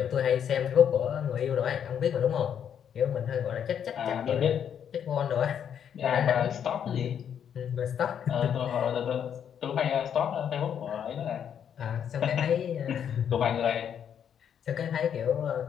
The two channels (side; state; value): right; quieter; 8.6 dB